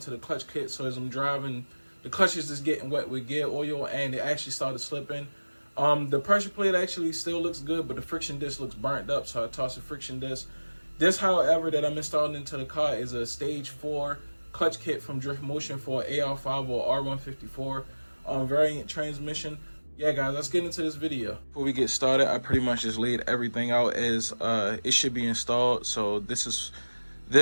the clutch kit. So as I'm driving, the clutch is just getting wet with gear oil, and it actually started slipping. The pressure plate actually still looks good, but the friction disc looks burnt up, so I tossed the friction disc. This, however, that I'm installing into the car is a stage 4 clutch kit from Drift Motion for AR5 or R154 variant transmission. Yeah, guys, let's get into this video. Before we get started, I pretty much just laid everything out as it should be installed. So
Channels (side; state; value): both; inverted; correlation -1.00